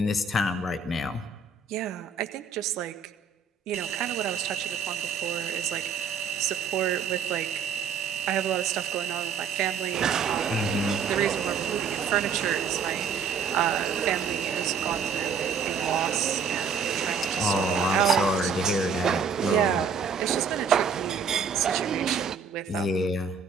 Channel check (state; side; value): quieter; left; 5.7 dB